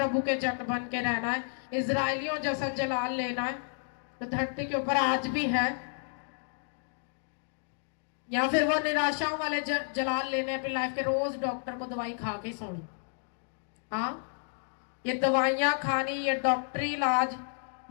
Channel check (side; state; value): right; silent; 57 dB below the other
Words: के जन बन के रहना है, इजराइलियों जैसा जलाल लेना है तो धरती के ऊपर आज भी है, या फिर वो निराशाओं वाले जलाल लेने अपनी लाइफ के, रोज डॉक्टर को दवाई खा के सोनी। हाँ, ये दवाइयां खानी, ये डॉक्टरी इलाज,